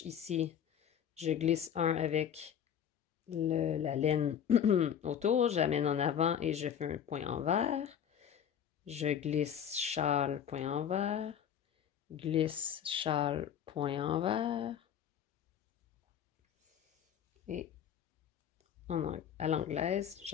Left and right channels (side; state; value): right; quieter; 8.8 dB